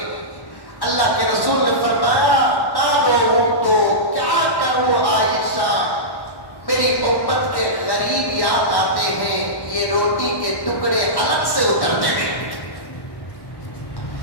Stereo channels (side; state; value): right; late; 1.1 ms